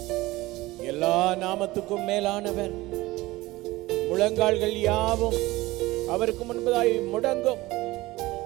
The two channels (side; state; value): left; quieter; 19.2 dB